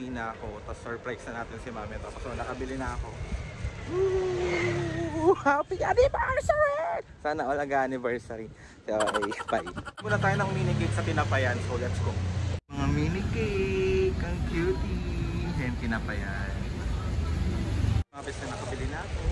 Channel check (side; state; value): both; identical; correlation 1.00